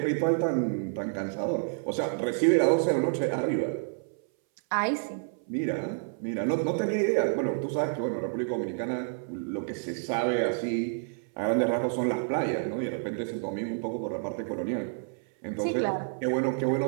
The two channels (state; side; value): silent; left; 59 dB below the other